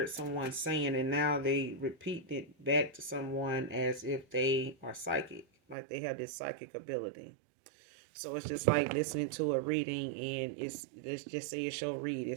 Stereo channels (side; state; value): left; drops out; at 5.8 s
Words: someone saying, and now they repeat it back to someone as if they are psychic, like they have this psychic ability. So it's just like listening to a reading, and let's just say it's your